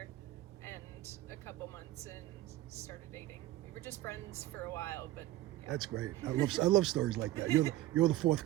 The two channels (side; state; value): left; quieter; 15.1 dB